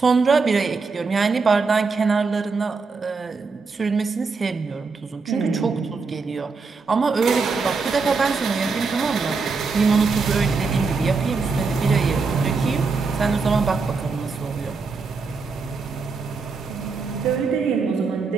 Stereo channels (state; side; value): quieter; left; 4.5 dB